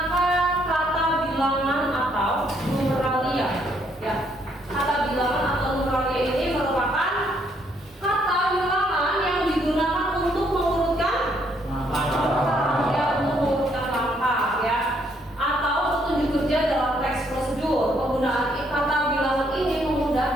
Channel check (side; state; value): both; normal; correlation 0.70